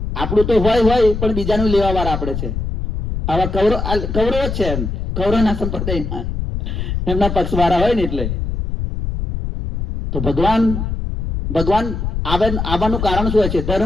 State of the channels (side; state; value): left; noise; rumble, 3 dB below the sound